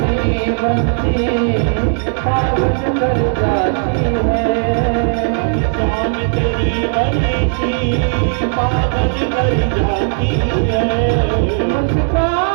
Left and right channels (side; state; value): left; silent; digital silence